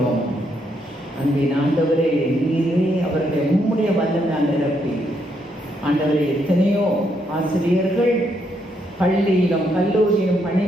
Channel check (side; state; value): both; normal; correlation 0.76